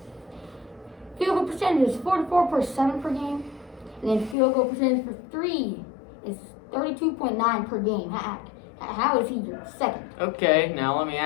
Field goal percentage is 44.7 per game, and then field goal percentage for three is 32.9 per game. How is he your second? Okay, now let me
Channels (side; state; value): right; drops out; at 4.4 s